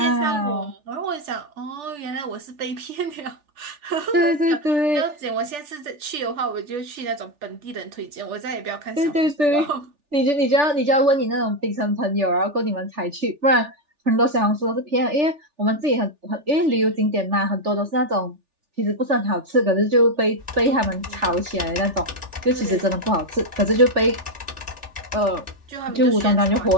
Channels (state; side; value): late; left; 3.4 ms